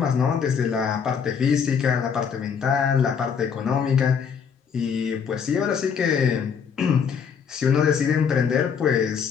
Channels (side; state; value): right; quieter; 6.8 dB